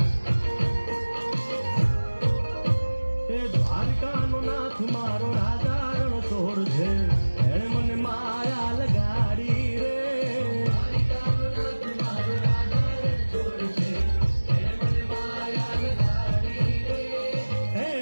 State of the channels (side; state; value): both; inverted; correlation -1.00